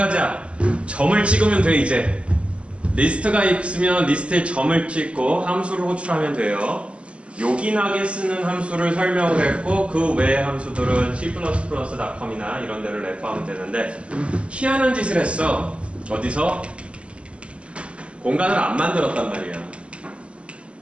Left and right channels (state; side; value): late; left; 0.060 ms